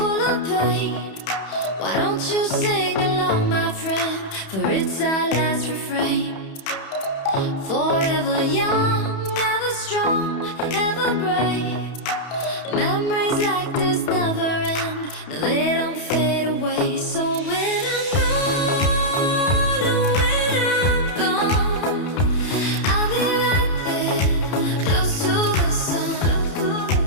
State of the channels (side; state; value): right; late; 31 ms